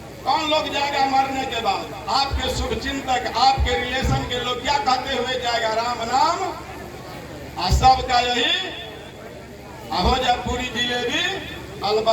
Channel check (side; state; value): both; identical; correlation 1.00